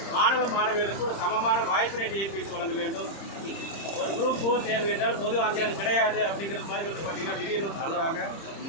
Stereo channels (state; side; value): late; right; 30 ms